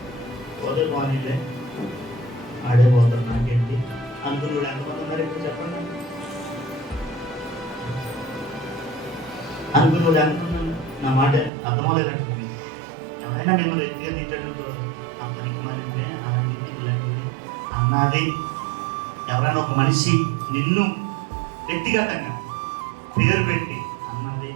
పోతే బాగానే ఆడే పోతాడు, నాకేంటి అనుకుని ఎంతమంది ఉన్నారు ఇప్పుడు చెప్పండి? అనుకుని ఎంతమంది? నా మాట అర్థమవులేనట్టుంది. ఎవరైనా మేము వ్యక్తిగా తిట్టండి, అతనికి మరి అలాంటిది ఇలాంటిది అన్నది. ఎవరైనా ఒక మనిషి నిన్ను వ్యక్తిగతంగా పేరు పెట్టి అన్నది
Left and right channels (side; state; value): left; drops out; at 11.5 s